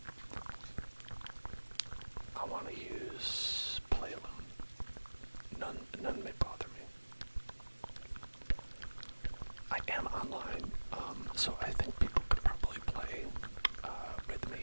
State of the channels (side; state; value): both; inverted; correlation -1.00